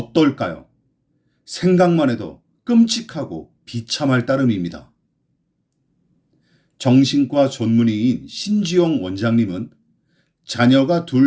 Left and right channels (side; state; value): both; identical; correlation 1.00